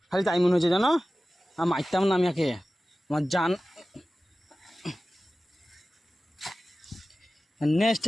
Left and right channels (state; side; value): normal; both; correlation 0.96